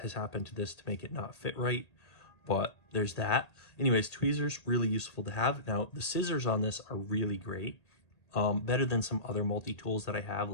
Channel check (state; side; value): late; right; 1.8 ms